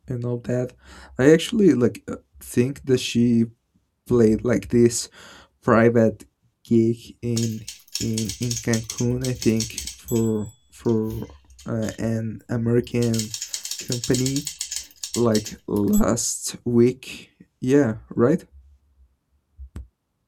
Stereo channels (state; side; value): identical; both; correlation 1.00